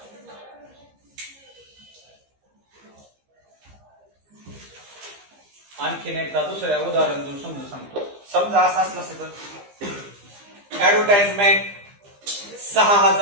आणखीन एकदा दुसऱ्या उदाहरण देऊन समजून सांगतो समजा असं असलं असतं तर ऍडव्हर्टाइजमेंट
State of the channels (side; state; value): left; late; 15 ms